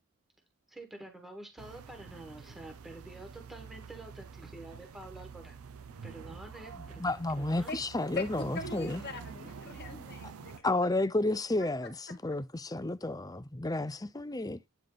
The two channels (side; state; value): both; normal; correlation 0.64